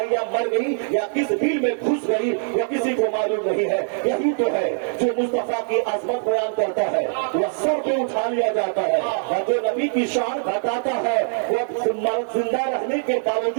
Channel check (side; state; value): left; silent; 60 dB below the other